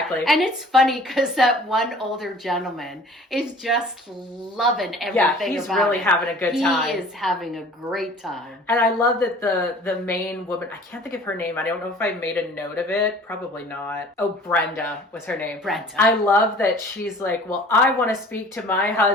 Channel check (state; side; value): normal; both; correlation 0.48